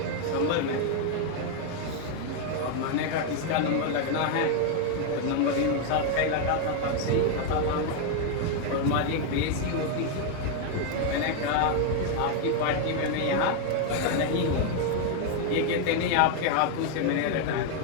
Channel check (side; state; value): both; different; correlation 0.01